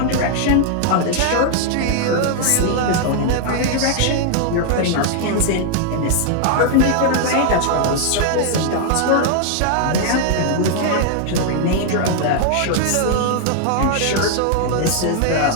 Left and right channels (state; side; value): different; both; correlation 0.00